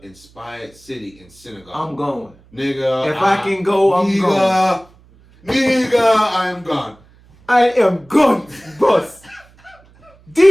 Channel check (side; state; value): right; noise; hum, 28 dB below the sound